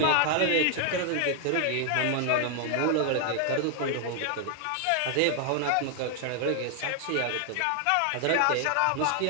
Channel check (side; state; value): both; different; correlation 0.00